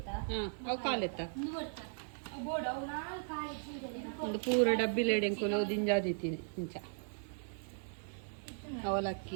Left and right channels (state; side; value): silent; left; 53 dB below the other